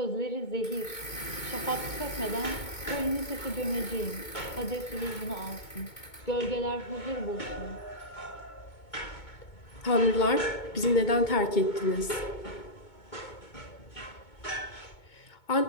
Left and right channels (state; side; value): late; right; 2.2 ms